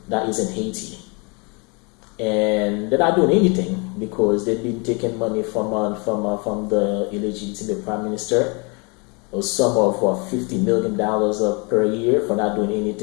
that is in Haiti? And they're not doing anything because they've been taking money from the illegitimate prime minister, a sum of $50 million per year for not doing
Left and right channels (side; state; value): right; quieter; 31.4 dB